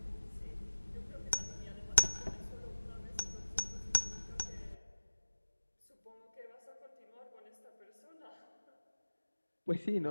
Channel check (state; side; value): inverted; both; correlation -1.00